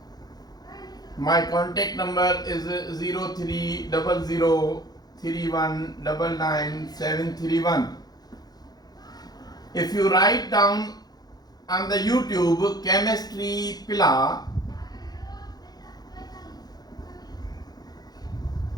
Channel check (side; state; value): right; late; 0.19 ms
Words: My contact number is 030031999731. If you write down on the YouTube chemistry Pila,